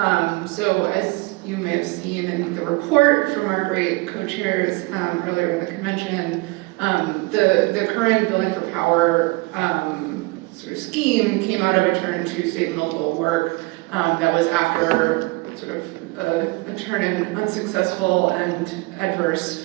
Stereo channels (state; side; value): quieter; left; 25.0 dB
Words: So as you may have seen in the report from our great co-chairs earlier in the convention, the current Building for Power sort of scheme came out of a turn to state and local work that was after sort of a turn in unsuccessful and adverse